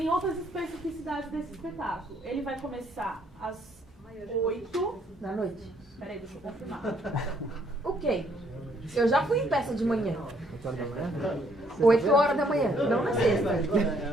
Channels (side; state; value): both; normal; correlation 0.67